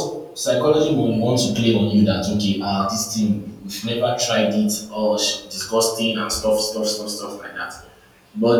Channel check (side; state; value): both; identical; correlation 1.00